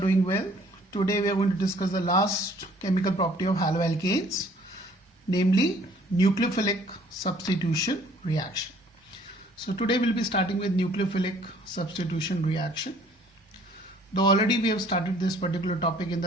well. Today we are going to discuss the last chemical property of haloalkanes, namely nucleophilic substitution reaction. So today we'll be starting with nucleophilic substitution reaction. Though already we have started this particular topic in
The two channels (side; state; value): both; normal; correlation 0.57